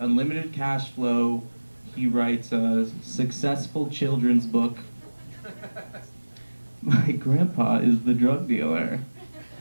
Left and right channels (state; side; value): inverted; both; correlation -1.00